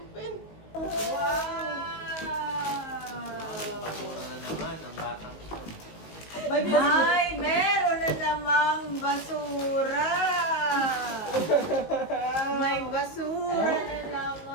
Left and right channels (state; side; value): late; right; 19 ms